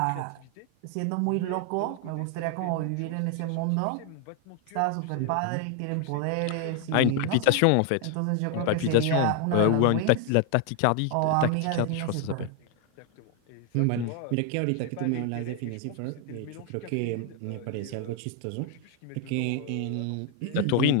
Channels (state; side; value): different; both; correlation 0.00